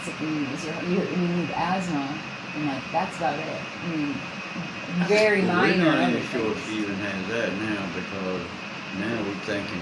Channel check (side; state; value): both; identical; correlation 1.00